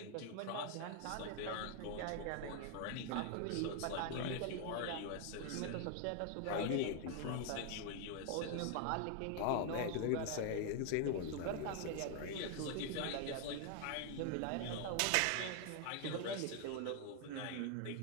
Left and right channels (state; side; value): different; both; correlation 0.00